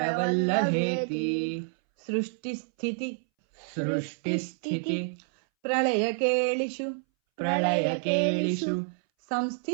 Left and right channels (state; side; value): silent; left; 59 dB below the other